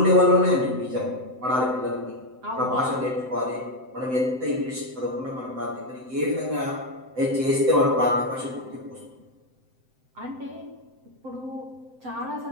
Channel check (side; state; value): left; late; 7.8 ms